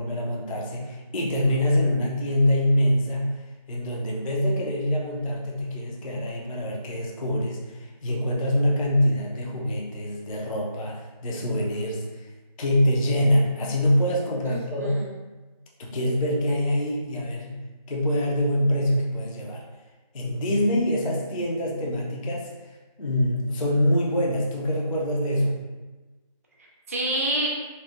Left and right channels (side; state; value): both; inverted; correlation -0.79